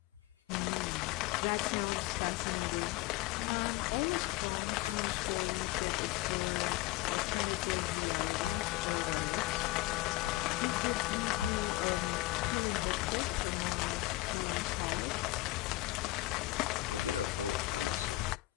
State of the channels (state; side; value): quieter; right; 18.4 dB